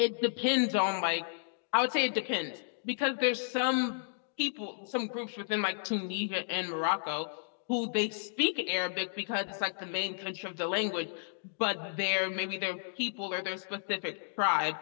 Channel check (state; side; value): silent; right; digital silence